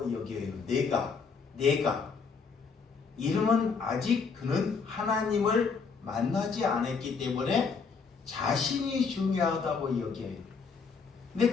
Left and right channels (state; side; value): quieter; right; 5.3 dB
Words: 여겨요. 내가 이러면 아직 그는 하나님을 만나지 않았기 때문에 자신이 중요하다고 여겨요.